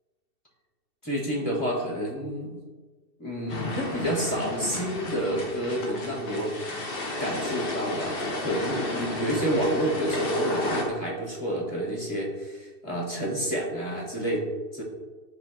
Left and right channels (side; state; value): right; late; 2.6 ms